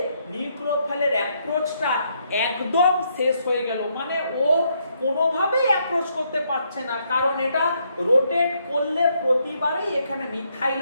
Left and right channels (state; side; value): inverted; both; correlation -0.74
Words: নিউক্লিওফাইলের অ্যাপ্রোচটা একদম শেষ হয়ে গেল। মানে ও কোনোভাবেই অ্যাপ্রোচ করতে পারছে না, কারণ এটা রোটেট করলে প্রতিবারেই এখানে মিথাইল